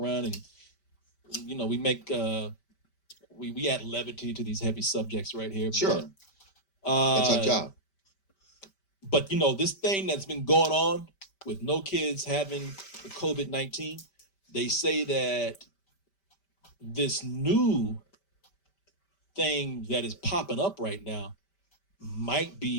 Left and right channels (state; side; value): late; right; 5.1 ms